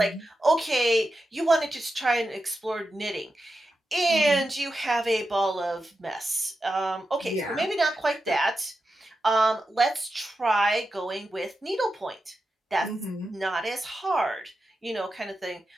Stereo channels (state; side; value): normal; both; correlation 0.90